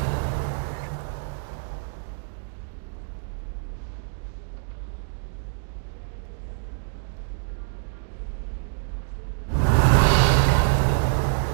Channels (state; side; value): silent; left; digital silence